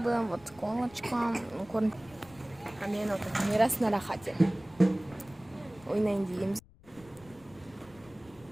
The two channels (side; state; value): left; noise; rumble, 24 dB below the sound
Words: вот колочка. А мен отыр. Мирас на рахате. Ойнайын дейміз.